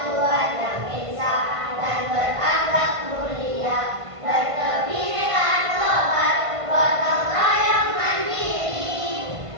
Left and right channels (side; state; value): left; late; 1.5 ms